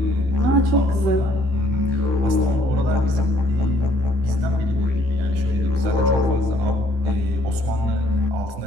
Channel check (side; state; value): left; late; 15 ms